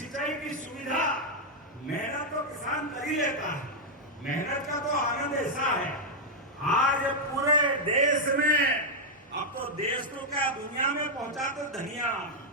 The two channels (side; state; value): both; normal; correlation -0.02